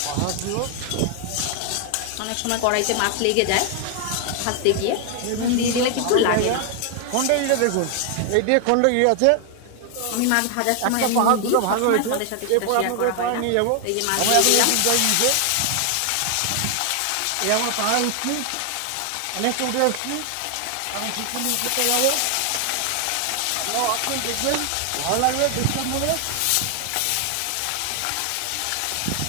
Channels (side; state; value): both; different; correlation 0.00